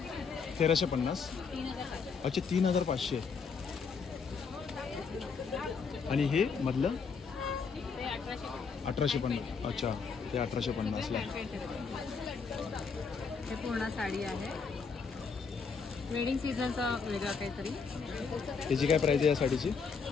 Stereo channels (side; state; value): right; quieter; 5.4 dB